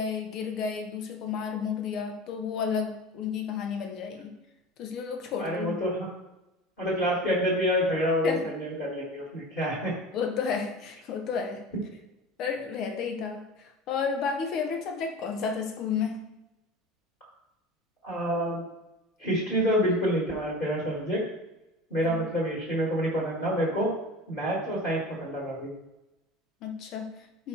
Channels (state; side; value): normal; both; correlation 0.34